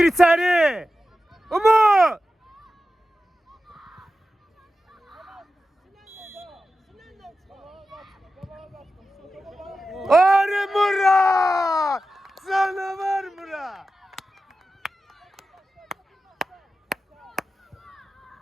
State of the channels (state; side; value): normal; both; correlation 0.92